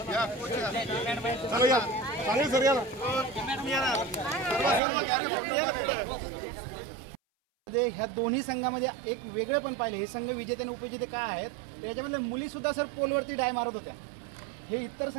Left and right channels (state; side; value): drops out; left; at 4.8 s